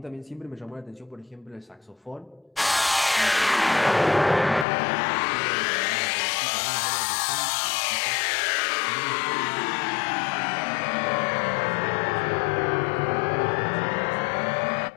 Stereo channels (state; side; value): drops out; right; at 4.7 s